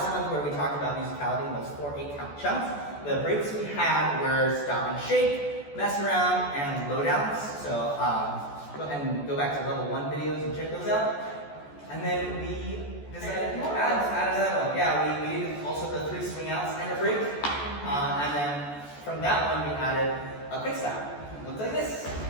month where we talked about musicality in those 4 8-count chunks. The breaks we had were stop and shake, mess around, and low downs. So go ahead and go back to level 1 videos and check those out. And then we decided to add another one. Yeah, we did also the 3 swing outs and a break. And then from that one we added a quick stop. It looks like this.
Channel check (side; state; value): right; late; 14 ms